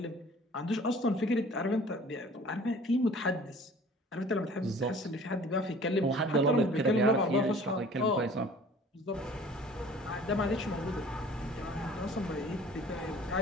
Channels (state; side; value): normal; both; correlation 0.49